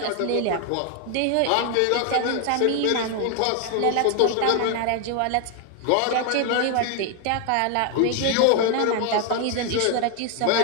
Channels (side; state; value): both; different; correlation 0.01